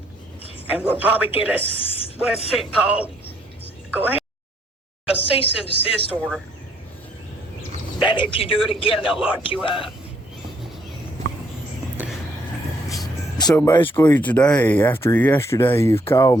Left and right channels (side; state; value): both; normal; correlation 0.68